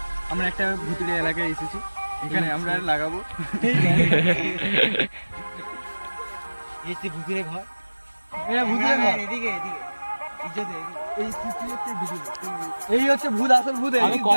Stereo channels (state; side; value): inverted; both; correlation -1.00